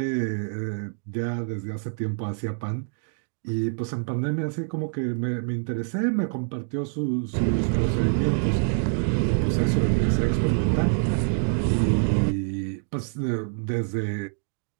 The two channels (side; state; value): left; silent; digital silence